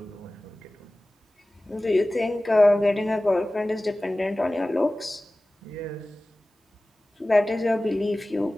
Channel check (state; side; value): normal; both; correlation 0.97